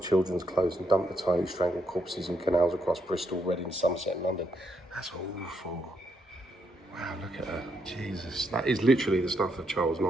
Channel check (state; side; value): normal; both; correlation 0.77